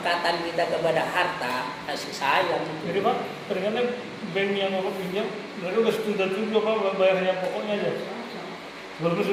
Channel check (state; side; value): identical; both; correlation 1.00